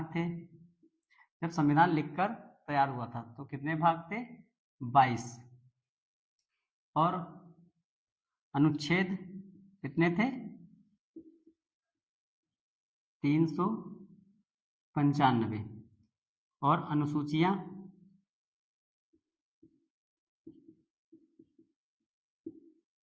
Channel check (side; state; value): both; identical; correlation 1.00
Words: थे। जब संविधान लिखकर तैयार हुआ था तो कितने भाग थे? 22। और अनुच्छेद कितने थे? 395। और अनुसूचियां